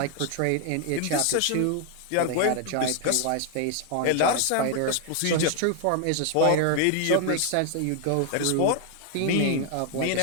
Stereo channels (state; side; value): different; both; correlation 0.00